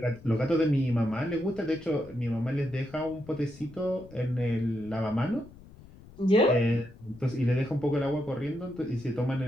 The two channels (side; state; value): left; noise; rumble, 21 dB below the sound